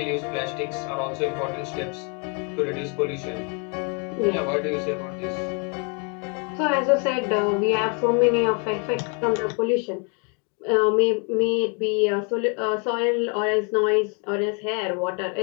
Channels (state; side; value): quieter; right; 34.9 dB